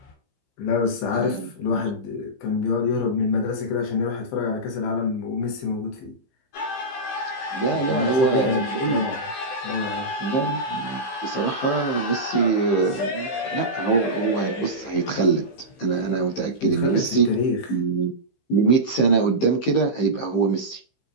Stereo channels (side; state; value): right; late; 15 ms